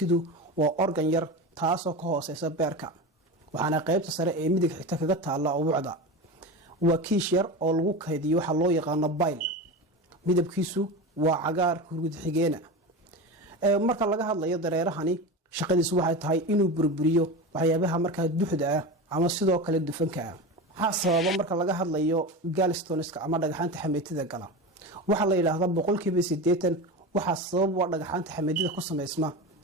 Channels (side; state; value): both; normal; correlation 0.25